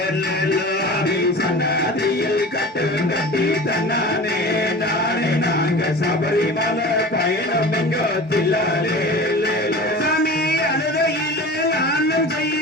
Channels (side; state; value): both; normal; correlation 0.36